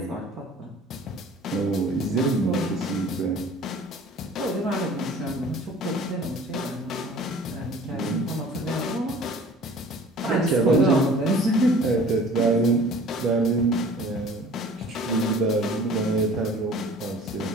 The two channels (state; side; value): normal; both; correlation 0.47